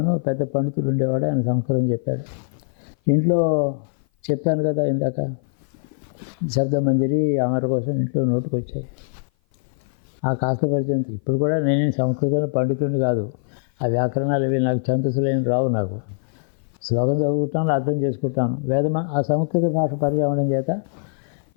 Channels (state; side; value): silent; right; 56 dB below the other